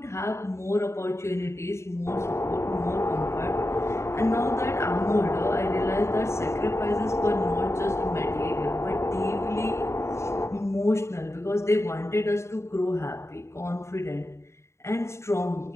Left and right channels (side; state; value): right; late; 0.13 ms